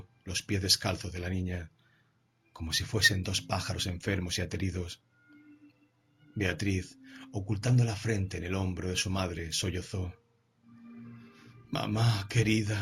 los pies descalzos de la niña, como si fuesen dos pájaros enfermos y ateridos. Beatriz, ocultando la frente en el hombro de su madre, sollozó. Mamá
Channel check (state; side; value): identical; both; correlation 1.00